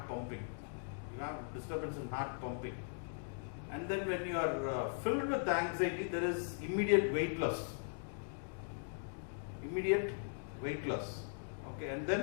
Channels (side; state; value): right; silent; digital silence